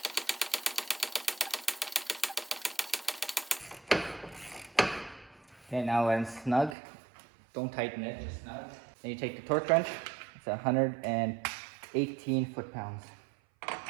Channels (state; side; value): drops out; left; at 6.8 s